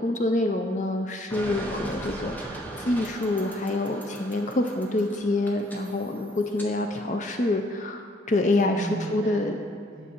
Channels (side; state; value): both; normal; correlation 0.64